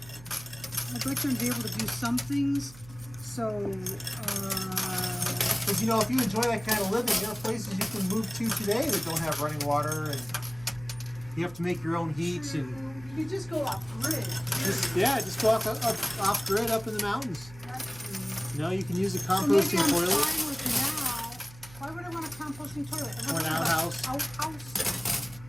I'd like them to be able to do some things. So, Because, you know, if you enjoy that kind of living, there are places you can move to today that don't have running water, and you have to make your own heat. And you just go off grid. just go off grid up in the mountains. You know, you can use a composting so toilet. Fine with now. Why would I want a composting toilet? Or an outhouse. Outhouse.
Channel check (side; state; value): right; noise; hum, 19 dB below the sound